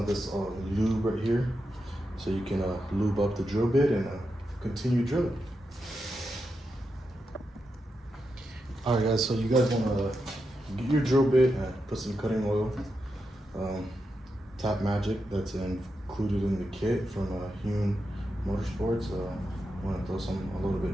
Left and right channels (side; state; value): both; normal; correlation 0.87